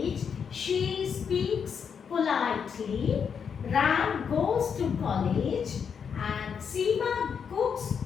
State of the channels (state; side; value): quieter; right; 6.8 dB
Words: she speaks politely, Ram goes to college, and Seema cooks